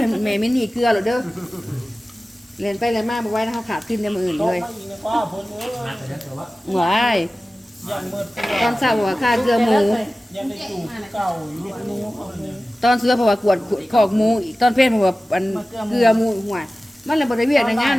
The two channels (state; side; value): normal; both; correlation 0.96